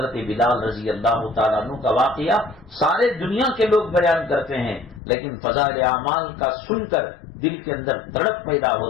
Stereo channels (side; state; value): right; drops out; at 5.0 s